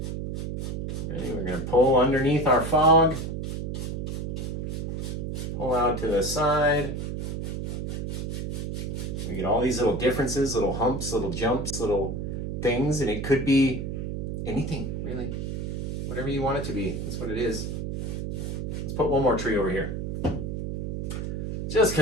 Ready? We're gonna pull underneath our fog. Pull out to the side. We get all these little differences, little humps, little jumps, little things, and it could be anything, really. Whatever you want it to be, that's what it is. Let's put one more tree over here. Just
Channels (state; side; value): noise; right; hum, 3 dB below the sound